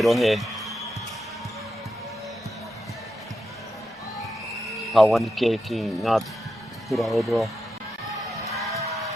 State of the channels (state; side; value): normal; both; correlation 0.87